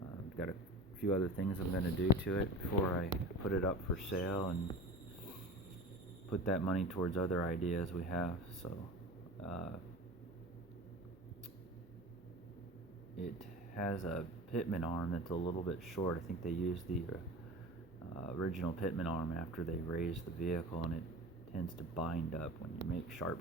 I've got a few other things I'm going to do to it before I put it up for sale and put that money towards other ideas we have. So it has a pitman arm that's a little bit short. I think they used the original pitman arm after they raised the vehicle, and it tends to bind up when you make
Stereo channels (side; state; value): both; normal; correlation 0.34